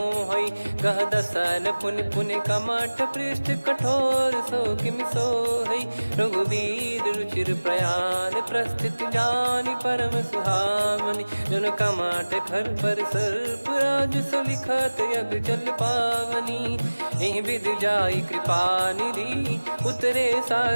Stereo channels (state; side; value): inverted; both; correlation -1.00